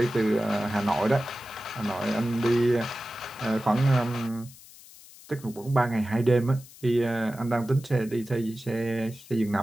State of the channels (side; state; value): left; noise; hiss, 21 dB below the sound